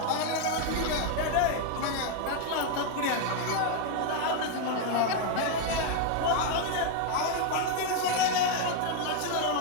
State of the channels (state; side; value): different; both; correlation 0.01